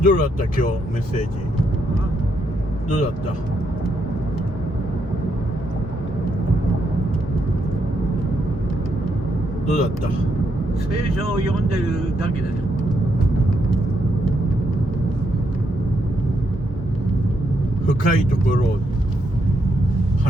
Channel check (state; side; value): normal; both; correlation 0.78